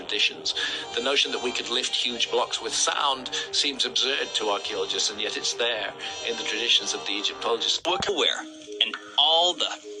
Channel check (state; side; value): identical; both; correlation 1.00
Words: The notion that we could lift huge blocks with sound seems absurd to archaeologists, and yet it's there in the traditions of the Egyptologists. Aware, and all the